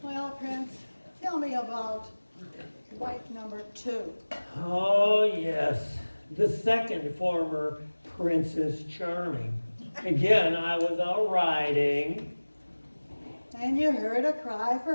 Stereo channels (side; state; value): both; inverted; correlation -1.00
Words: Well, Prince, tell me about wife number 2. Oh, yes. The second former Princess Charming. Again, I was out riding. And you heard a cry